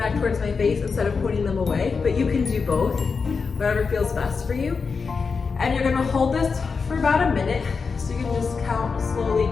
towards my face, instead of putting them away, but you can do both, whatever feels best for you. And you're gonna hold this for about a minute, so you can just count slowly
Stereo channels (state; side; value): quieter; right; 5.1 dB